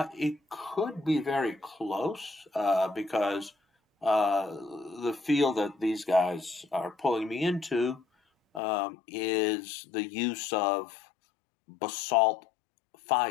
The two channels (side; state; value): right; drops out; at 8.6 s